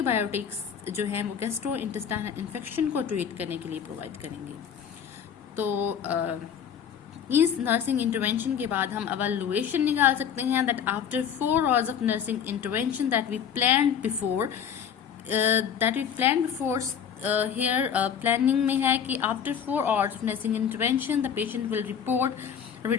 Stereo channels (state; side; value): quieter; right; 8.0 dB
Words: जो है वो गैस्ट्रो इंटेस्टाइनल इन्फेक्शन को ट्रीट करने के लिए प्रोवाइड करेंगे। तो इस नर्सिंग इंटरवेंशन के बाद हम एवैल्यूएशन निकाल सकते हैं that after 4 hours of nursing intervention that we planned before here planning में है कि after 4 hours of nursing intervention the patient will report